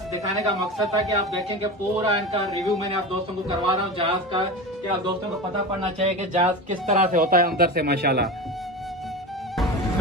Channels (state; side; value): normal; both; correlation 0.27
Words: दिखाने का मकसद था कि आप देखें कि पूरा इनका रिव्यू मैंने आप दोस्तों को करवा रहा हूँ जहाज का, कि आप दोस्तों को पता पड़ना चाहिए कि जहाज किस तरह से होता है अंदर से माशाल्लाह।